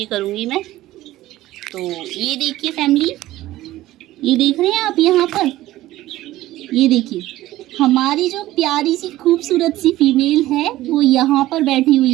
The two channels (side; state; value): left; quieter; 15.8 dB